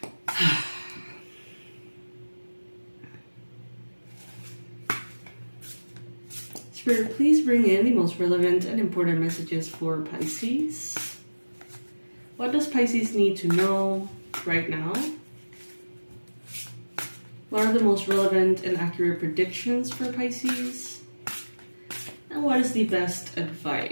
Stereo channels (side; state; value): both; inverted; correlation -1.00